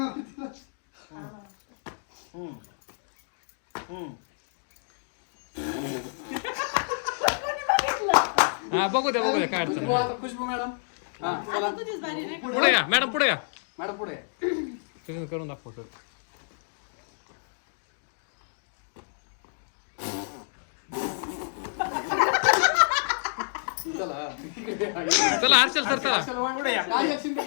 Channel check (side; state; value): right; silent; digital silence